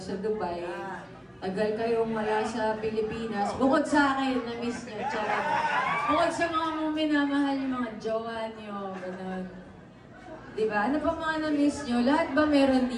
sa Dubai, tagal kayong wala sa Pilipinas. Bukod sa akin, namiss nyo. Charot. Bukod sa mga minamahal yung mga jowa nyo, ganun. Diba? Ano pa mga namiss nyo? Lahat ba meron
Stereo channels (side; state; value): both; identical; correlation 1.00